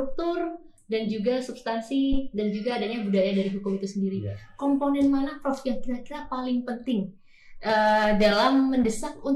dan juga substansi dan juga adanya budaya dari hukum itu sendiri. Komponen mana Prof yang kira-kira paling penting dalam mendesak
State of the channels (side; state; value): both; identical; correlation 1.00